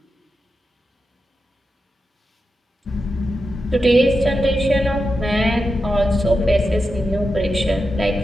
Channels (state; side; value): normal; both; correlation 0.89